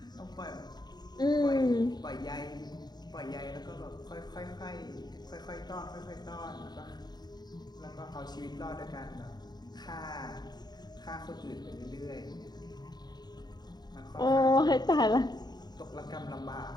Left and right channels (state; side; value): late; right; 0.20 ms